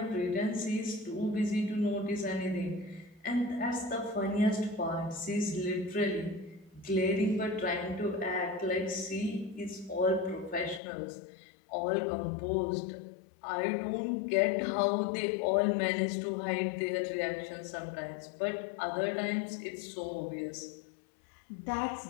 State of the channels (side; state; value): right; drops out; at 10.8 s